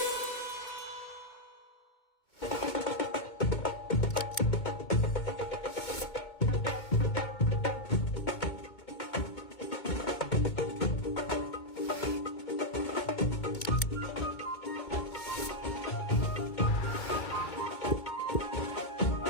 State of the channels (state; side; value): late; right; 2.2 ms